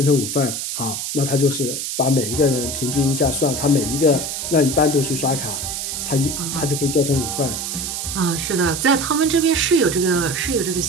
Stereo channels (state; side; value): noise; right; hiss, 4 dB below the sound